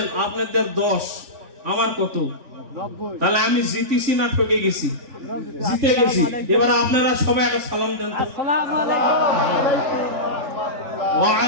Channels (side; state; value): left; late; 3.4 ms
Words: আপনাদের 10, আমার কত? 90 তাহলে আমি জিতেছি না ঠকে গেছি? জিতে গেছি। এবার আপনারা সবাই একটা সালাম দেন তো। আসসালামু আলাইকুম ওয়া